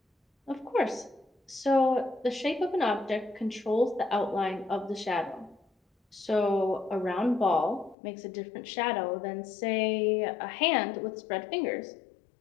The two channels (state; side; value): drops out; right; at 8.0 s